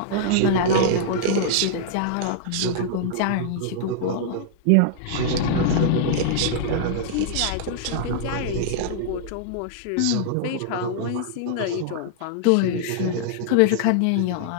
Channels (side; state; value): both; different; correlation -0.01